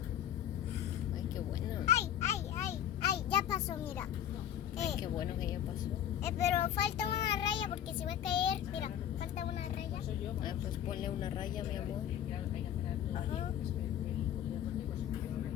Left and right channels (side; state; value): right; quieter; 10.4 dB